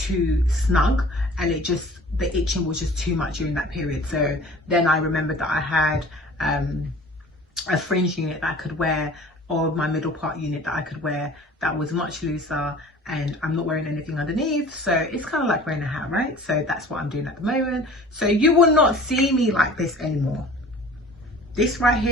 snug, and the itching was just too much during that period. So then I remembered that I had a fringe unit that I could wear, or my middle part unit that I could wear, that was much looser, and I'm not wearing anything underneath, so it's kind of like wearing a hat, right? So that's what I'm doing at the moment. So you will not see me like this anymore. This right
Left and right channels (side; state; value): both; normal; correlation 0.46